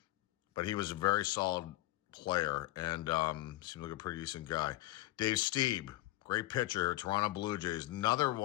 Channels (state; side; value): quieter; right; 16.8 dB